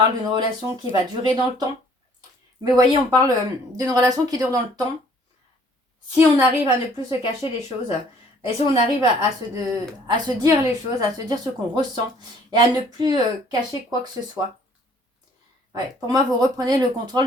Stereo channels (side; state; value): both; normal; correlation 0.58